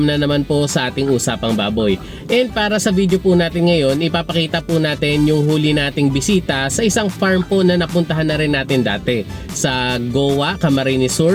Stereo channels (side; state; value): both; identical; correlation 1.00